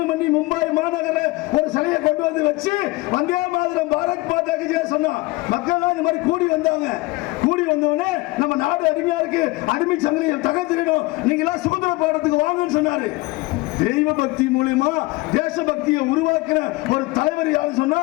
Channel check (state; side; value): quieter; right; 22.1 dB